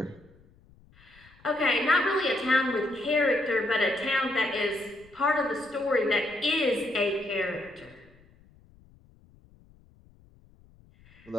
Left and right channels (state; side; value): noise; left; rumble, 28 dB below the sound